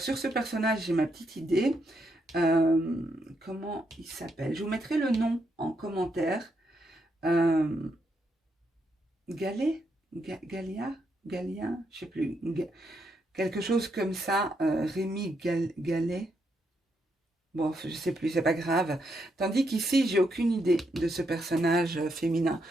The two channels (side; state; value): both; normal; correlation 0.79